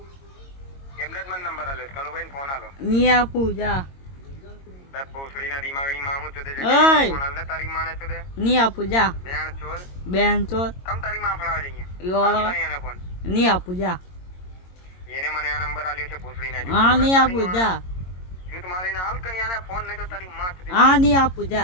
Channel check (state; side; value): late; right; 22 ms